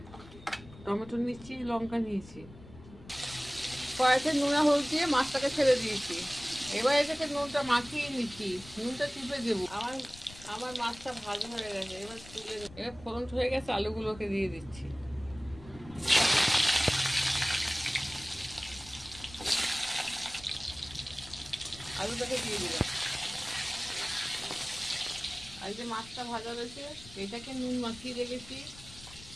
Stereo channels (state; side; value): noise; left; rumble, 19 dB below the sound